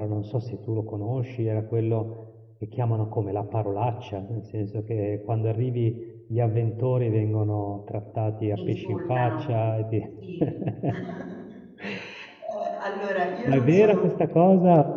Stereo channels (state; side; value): identical; both; correlation 1.00